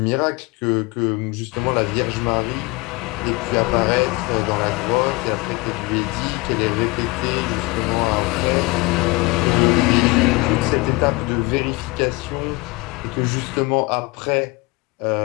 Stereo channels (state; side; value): quieter; right; 24.1 dB